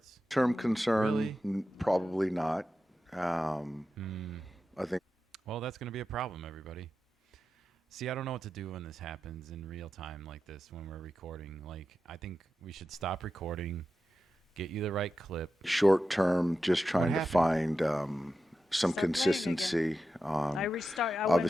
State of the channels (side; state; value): both; normal; correlation 0.91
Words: concern, Really? probably not. I think Well, that's going to be a problem, everybody. See, I don't know what to do when this happens in real time like this when we're recording. Like, I think we should stop recording, get you the right clip. short-term, just trying to happened? find some Start playing consistency I on restart. I